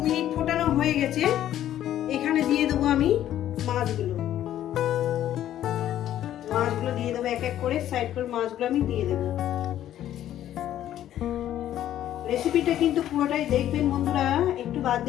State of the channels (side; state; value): right; quieter; 11.9 dB